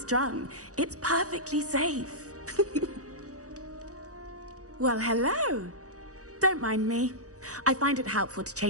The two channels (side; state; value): left; late; 0.66 ms